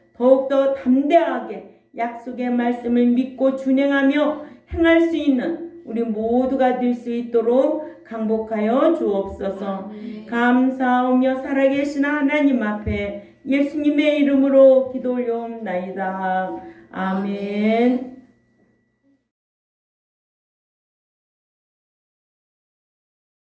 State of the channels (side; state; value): both; identical; correlation 1.00